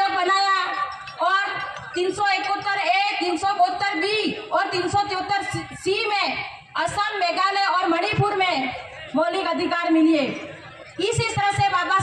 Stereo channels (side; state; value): both; identical; correlation 1.00